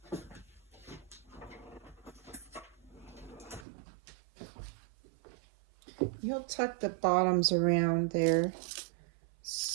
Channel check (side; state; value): left; drops out; at 3.7 s